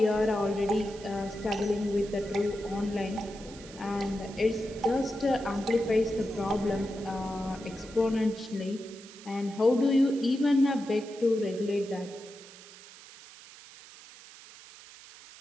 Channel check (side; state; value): right; noise; hiss, 19 dB below the sound